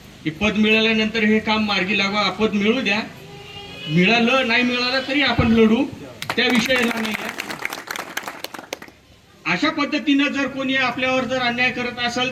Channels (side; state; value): both; identical; correlation 1.00